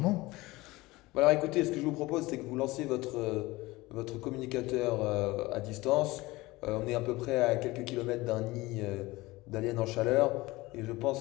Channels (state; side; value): quieter; right; 20.4 dB